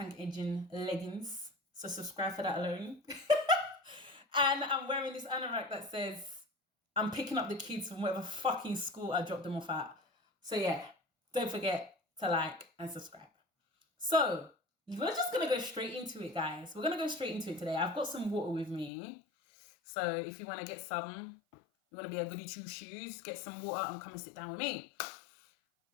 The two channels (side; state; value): right; drops out; at 18.9 s